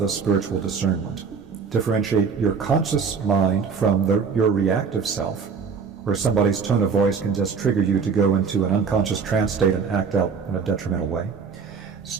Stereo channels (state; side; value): quieter; left; 5.7 dB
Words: spiritual discernment. Differentiate your conscious mind from your reactive self, where somebody's tone of voice can just trigger you to go into an unconscious trance state and act out in a detrimental way.